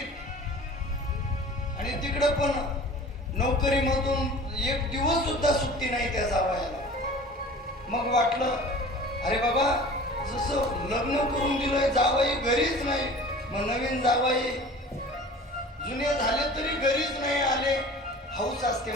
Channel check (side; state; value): both; normal; correlation 0.42